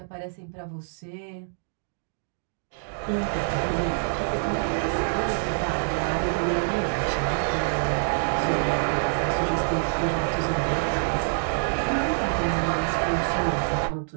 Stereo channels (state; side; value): silent; left; digital silence